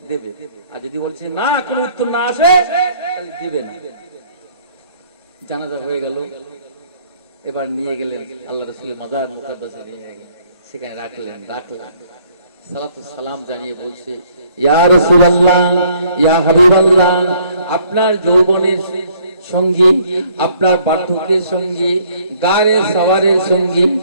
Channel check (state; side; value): inverted; both; correlation -0.63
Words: দেবে। আর যদি বলছে না, কোনো উত্তর না আসে, তাহলে দিবে না। জানাজা হয়ে গেল, এবার নিয়ে গেলেন আল্লাহ রাসূলের মাজার মুকাদ্দাসে, নিয়ে সেখানে রাখলেন। সালাতু সালাম জানিয়ে বলছে, ইয়া রাসূলুল্লাহ, ইয়া হাবিবাল্লাহ, আপনার যৌবনের সঙ্গী, আপনার বার্ধক্যের সঙ্গী, গারে সওয়ারের সঙ্গী,